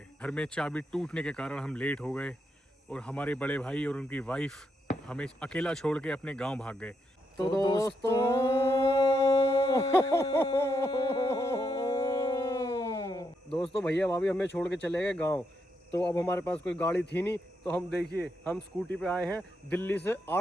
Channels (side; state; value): both; normal; correlation 0.81